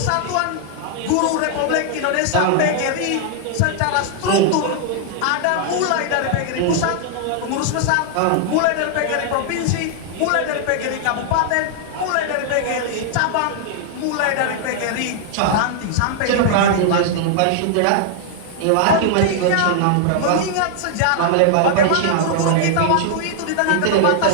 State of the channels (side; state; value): both; different; correlation -0.01